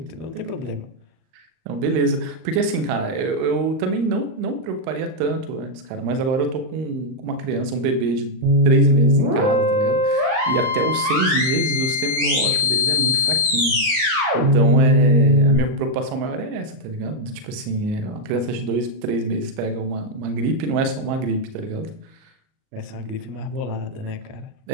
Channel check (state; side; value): late; left; 38 ms